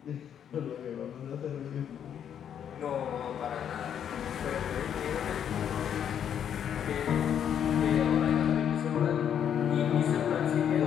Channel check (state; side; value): quieter; right; 8.9 dB